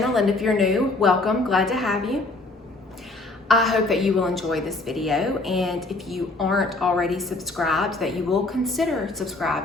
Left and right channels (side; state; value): right; quieter; 3.1 dB